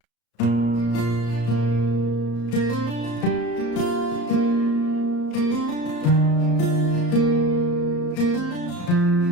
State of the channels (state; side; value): late; right; 34 ms